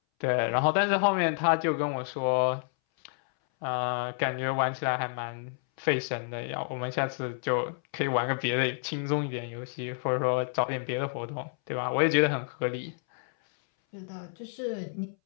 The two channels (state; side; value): silent; right; 58 dB below the other